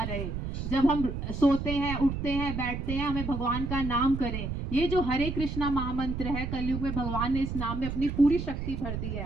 रहे। जब हम सोते हैं, उठते हैं, बैठते हैं, हमें भगवान का नाम करें। ये जो हरे कृष्णा महामंत्र है, कलयुग में भगवान ने इस नाम में अपनी पूरी शक्ति भर दी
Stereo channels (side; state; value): right; noise; rumble, 4 dB below the sound